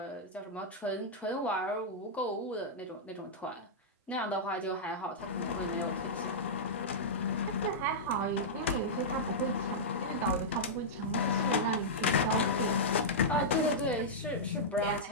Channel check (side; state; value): both; normal; correlation -0.10